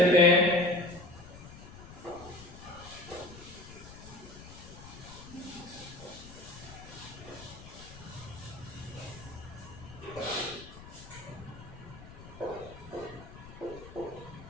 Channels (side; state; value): left; noise; rumble, 16 dB below the sound